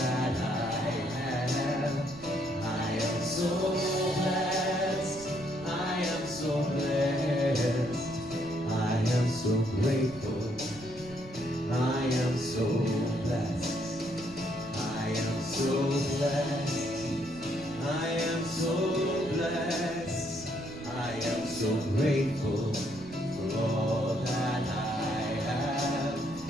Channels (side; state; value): right; noise; rumble, 18 dB below the sound